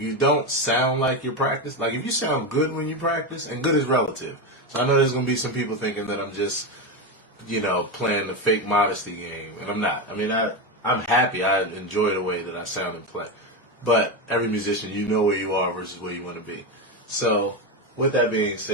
you don't sound like you practice, like if you sound good when you practice, and good is relative. So I know there's going to be some people thinking that I'm just, playing the fake modesty game, and I'm not. I mean, I'm happy. I enjoy the way that I sound and play. But every musician, you know where you are versus where you want to be. So with that being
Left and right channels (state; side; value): normal; both; correlation 0.13